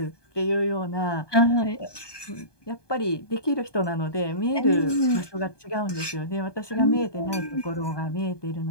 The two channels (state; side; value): late; right; 1.2 ms